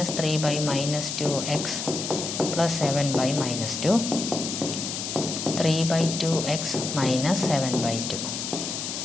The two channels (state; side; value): noise; left; hiss, 4 dB below the sound